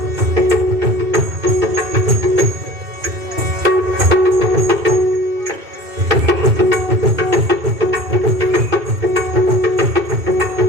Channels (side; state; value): left; late; 2.4 ms